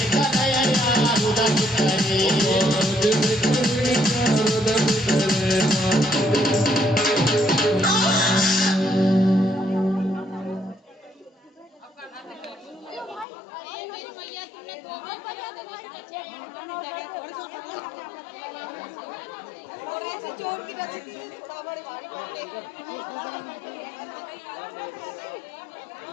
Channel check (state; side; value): drops out; right; at 13.2 s